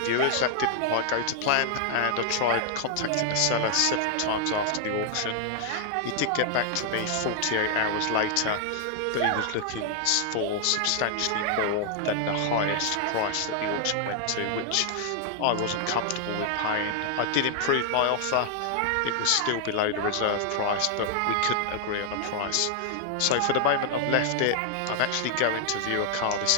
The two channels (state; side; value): different; both; correlation 0.00